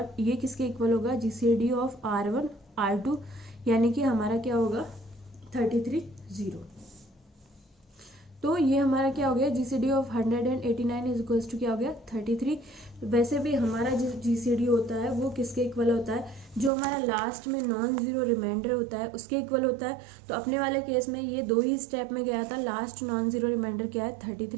ये किसके इक्वल होगा, जीसीडी ऑफ r1 r2 यानी कि हमारा क्या होगा 33 0। तो ये हमारा क्या हो गया, GCD of 189 is equals to क्या हो गया 33। वैसे भी हमारा जो जीसीडी होता है वो किसके इक्वल होता है, जो हमारा लास्ट में नॉन जीरो रिमाइंडर होता है उसके इक्वल होता है। तो अपने वाले केस में ये 2 ही स्टेप में गया था, लास्ट नॉन जीरो रिमाइंडर क्या है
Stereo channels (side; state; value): left; drops out; at 16.7 s